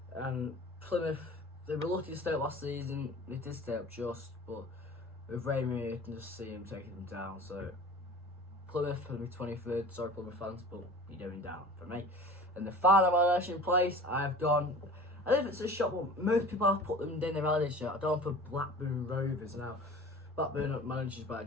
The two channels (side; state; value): both; normal; correlation 0.41